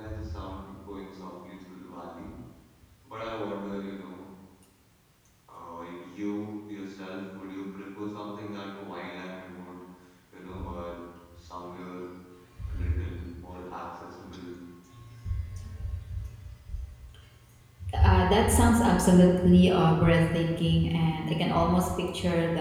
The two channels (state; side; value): identical; both; correlation 1.00